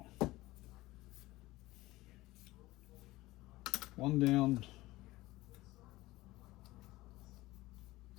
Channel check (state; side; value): quieter; right; 18.7 dB